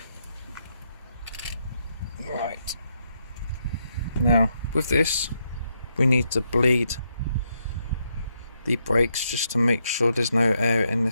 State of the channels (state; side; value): inverted; both; correlation -0.79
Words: Right. Now, with this, we need to bleed the brakes just to make sure there's no air in